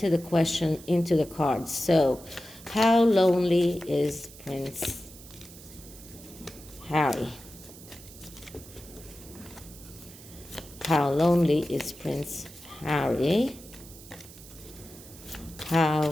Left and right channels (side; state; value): right; noise; hiss, 18 dB below the sound